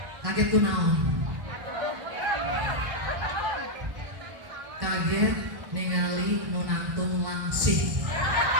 Kaget tuh naon? Kaget ningali nu nangtung langsing.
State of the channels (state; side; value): late; left; 1.1 ms